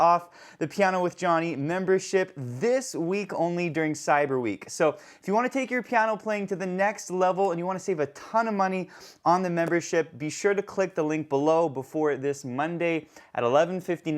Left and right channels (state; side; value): identical; both; correlation 1.00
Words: the Piano with Jonny membership this week only during Cyber Week. So if you want to take your piano playing to the next level and you want to save a ton of money on the membership, be sure to click the link below before this Monday at